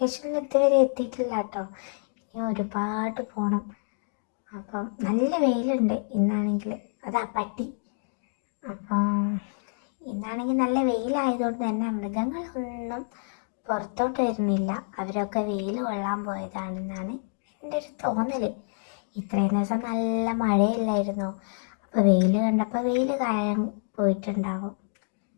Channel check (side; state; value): right; silent; digital silence